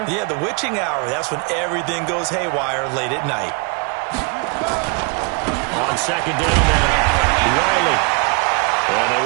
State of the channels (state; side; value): quieter; left; 32.8 dB